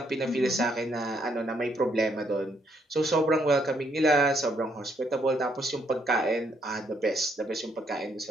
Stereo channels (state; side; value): normal; both; correlation 0.72